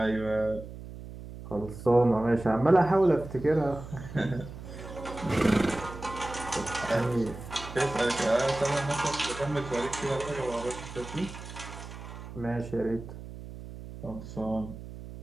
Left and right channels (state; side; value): noise; right; hum, 12 dB below the sound